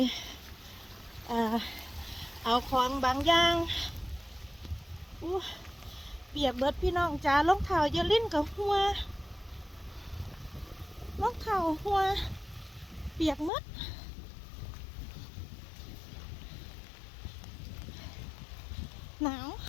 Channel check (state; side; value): drops out; right; at 13.5 s